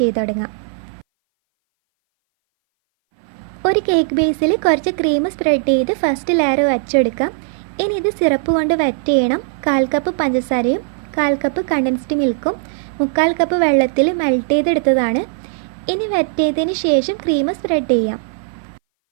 ചെയ്ത് തുടങ്ങാം. ഒരു കേക്ക് ബേസിൽ കുറച്ച് ക്രീം സ്പ്രെഡ് ചെയ്ത് ഫസ്റ്റ് ലെയർ വച്ചെടുക്കാം. ഇനി ഇത് സിറപ്പ് കൊണ്ട് വെറ്റ് ചെയ്യണം. 1/4 കപ്പ് പഞ്ചസാരയും 1/4 കപ്പ് കണ്ടൻസ്ഡ് മിൽക്കും 3/4 കപ്പ് വെള്ളത്തിൽ മെൽറ്റ് ചെയ്തെടുത്തതാണ്. ഇനി വെറ്റ് ചെയ്തതിന് ശേഷം ക്രീം സ്പ്രെഡ് ചെയ്യാം.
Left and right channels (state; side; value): silent; left; 60 dB below the other